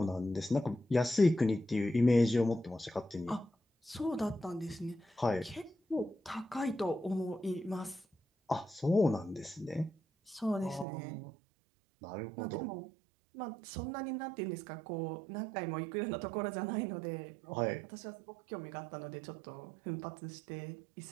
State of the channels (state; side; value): drops out; left; at 10.9 s